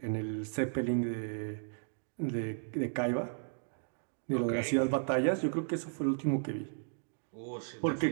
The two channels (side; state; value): left; silent; digital silence